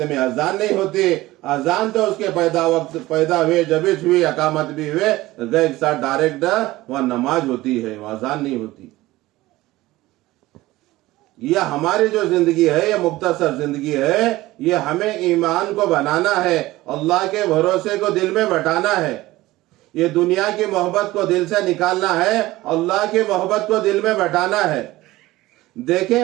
में अजान नहीं होती। अजान तो उसके पैदा हुए जब भी हुई, अकामत भी हुए, गए के साथ डायरेक्ट वहां नमाज होती है, वहां अजान नहीं होती। यह हमारी जो जिंदगी है, यह मुख्तसर जिंदगी है, ये हमें ईमान को बनाना है, अल्लाह के भरोसे को दिल में बैठाना है, ये दुनिया की मोहब्बत को दिल से निकालना है, अल्लाह की मोहब्बत को दिल में बैठाना है।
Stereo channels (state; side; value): quieter; left; 18.0 dB